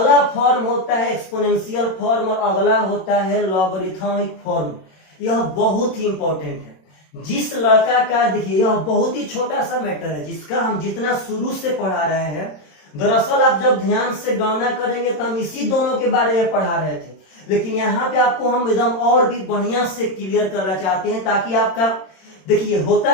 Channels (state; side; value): late; right; 27 ms